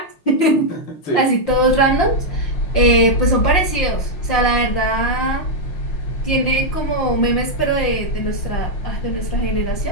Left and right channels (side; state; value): right; late; 5.8 ms